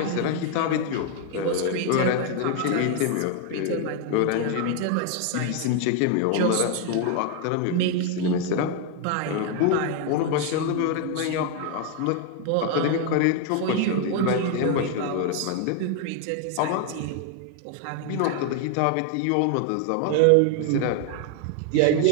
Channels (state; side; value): different; both; correlation 0.01